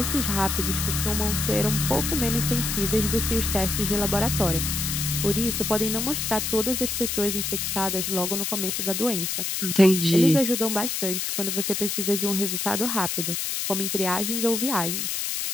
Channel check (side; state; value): left; noise; hiss, 1 dB below the sound